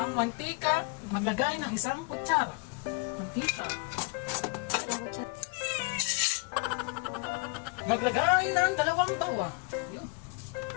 mantika. Maglagay ng isang kutsara. Mantika. Maglagay ng 2 bawang. Yun.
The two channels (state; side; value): quieter; right; 32.0 dB